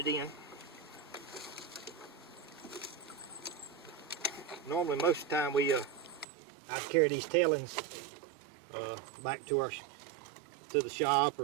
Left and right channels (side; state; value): left; drops out; at 6.2 s